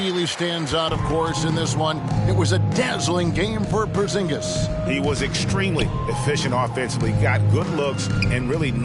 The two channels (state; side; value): identical; both; correlation 1.00